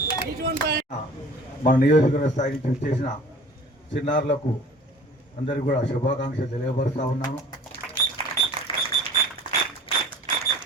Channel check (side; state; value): both; normal; correlation 0.46